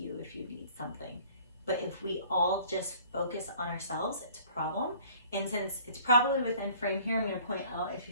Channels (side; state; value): both; inverted; correlation -0.53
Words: if you need something. But if we all just focus on ourselves, it's a problem. And since it's probably within frame here, I'm going to point out, if